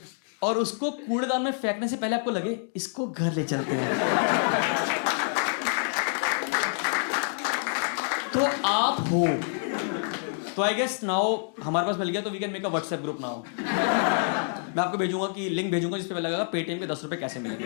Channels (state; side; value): silent; right; digital silence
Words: और उसको कूड़ेदान में फेंकने से पहले आपको लगे इसको घर ले चलते हैं, तो आप हो। तो आई गेस नाउ हमारे पास मिल गया, तो we can make a WhatsApp group now. मैं आपको भेजूंगा कि लिंक भेजूंगा जिस पे लगेगा पेटीएम पे 10 रुपए कैसे मिलेंगे।